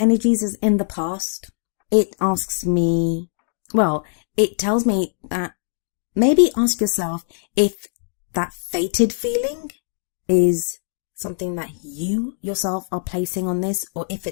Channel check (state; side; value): silent; right; digital silence